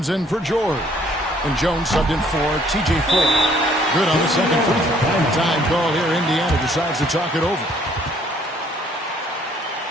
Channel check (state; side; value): normal; both; correlation 0.62